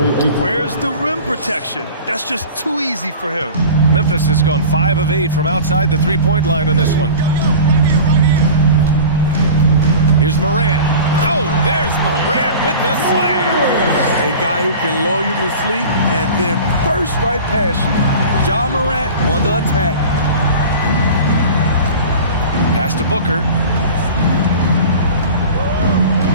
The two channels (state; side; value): inverted; both; correlation -0.38